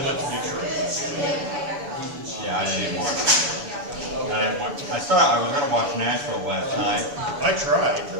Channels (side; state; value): left; late; 6.9 ms